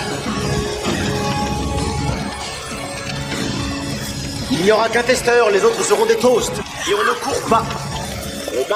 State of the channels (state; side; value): identical; both; correlation 1.00